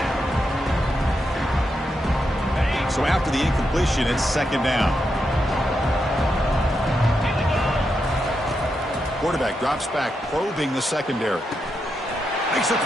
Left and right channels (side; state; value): both; normal; correlation 0.84